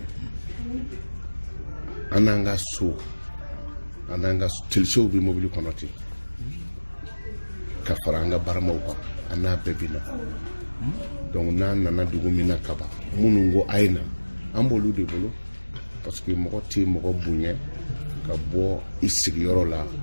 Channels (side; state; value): both; inverted; correlation -1.00